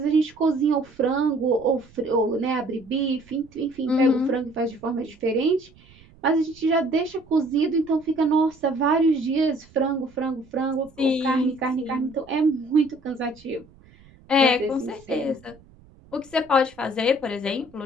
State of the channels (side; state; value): right; noise; rumble, 26 dB below the sound